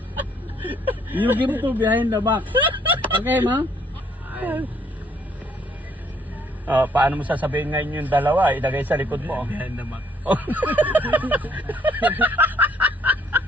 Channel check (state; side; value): normal; both; correlation 0.65